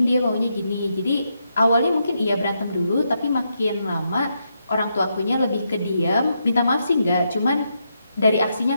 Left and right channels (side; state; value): both; inverted; correlation -0.82